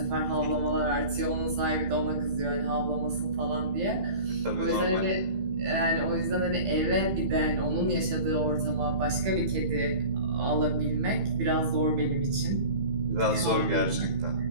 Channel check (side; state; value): left; late; 15 ms